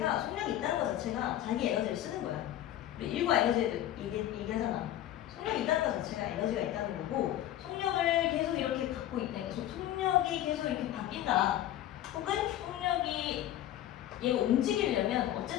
속력이 있다는 것 자체가 자기 에너지를 쓰는 거야. 우리 일과 에너지에도 얘기하잖아. 속력이 있다는 것 자체가 에너지가 있다는 거고 속력을 계속 이렇게 갖고 있다는 거. 속력이 계속 이렇게 바뀐다. 혹은 속력이 얘가 움직이려면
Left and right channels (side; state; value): right; quieter; 12.7 dB